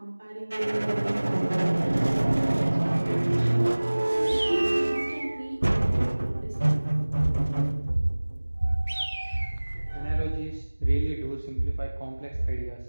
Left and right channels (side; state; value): both; inverted; correlation -1.00